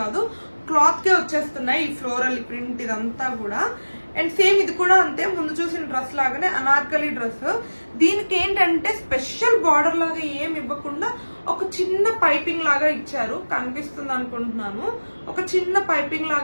కాదు, క్లాత్ కే వచ్చేస్తున్నాయి ఈ ఫ్లోరల్ ప్రింట్ ఇదంతా కూడా. అండ్ సేమ్ ఇది కూడా అంతే, ముందు చూసిన డ్రెస్ లాగానే అనార్కలి డ్రెస్. దీనికి ఏంటంటే స్పెషల్ బార్డర్ లాగా ఏమి ఇవ్వకుండా ఒక చిన్న పైపింగ్ లాగా ఇచ్చారు, కనిపిస్తుంది అనుకుంటున్నాను. ఒక చిన్న పైపింగ్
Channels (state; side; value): inverted; both; correlation -1.00